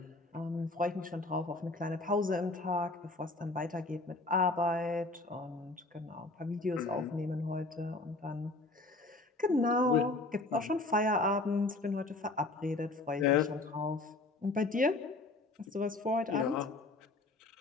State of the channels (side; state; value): right; quieter; 3.1 dB